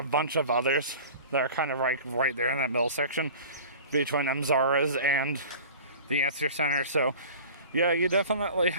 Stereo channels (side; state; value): both; inverted; correlation -0.40